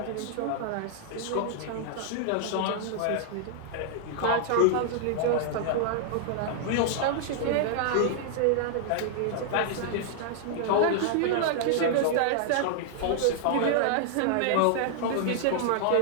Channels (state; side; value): different; both; correlation -0.01